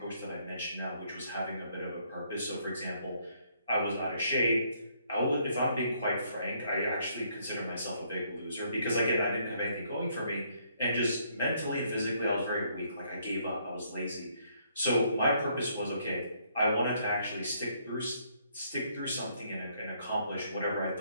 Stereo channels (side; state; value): both; inverted; correlation -0.69